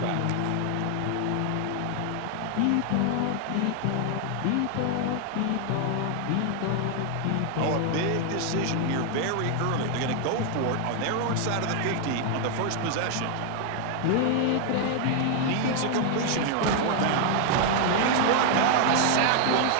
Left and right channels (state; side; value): different; both; correlation 0.00